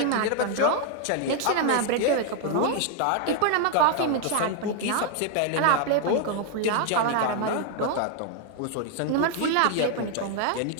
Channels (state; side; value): different; both; correlation 0.00